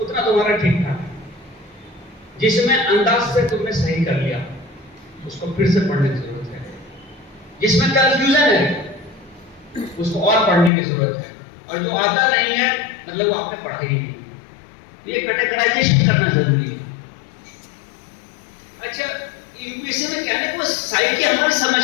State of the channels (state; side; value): drops out; right; at 10.7 s